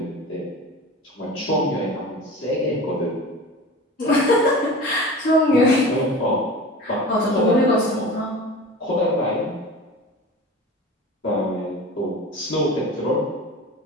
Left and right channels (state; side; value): normal; both; correlation 0.34